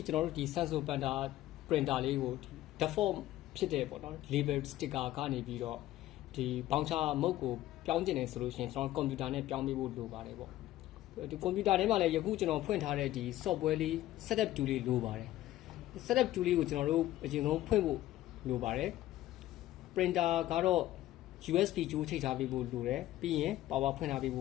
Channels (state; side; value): quieter; right; 14.7 dB